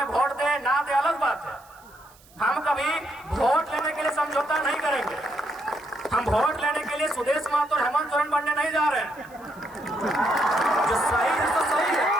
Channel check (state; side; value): noise; right; hiss, 27 dB below the sound